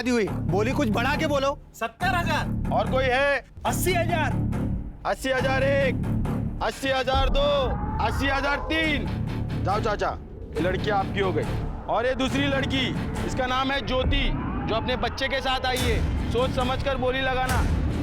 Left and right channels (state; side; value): identical; both; correlation 1.00